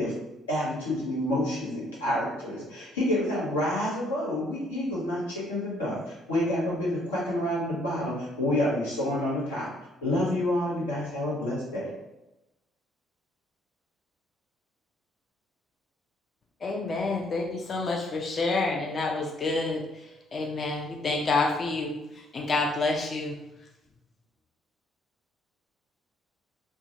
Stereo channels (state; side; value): normal; both; correlation 0.65